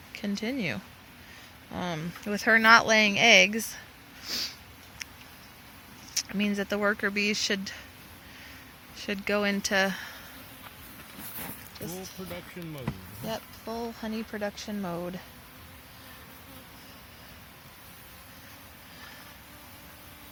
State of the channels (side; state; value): both; identical; correlation 1.00